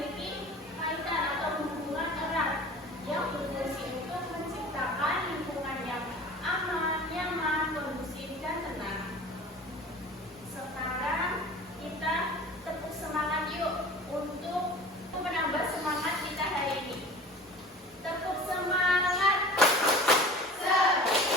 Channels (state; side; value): normal; both; correlation 0.40